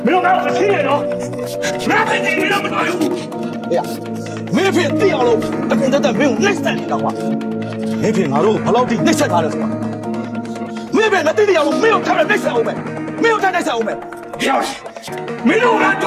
没有拿我亲人哦，拿飞机没那么大用。哎呀，没骗地要喽，那现在在没有内塞的话，没骗俺喽，把老弟内塞他了是吧？没骗那弟弟要喽，没有他的内塞我们，没有他内塞我们。要是没有俺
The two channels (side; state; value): both; identical; correlation 1.00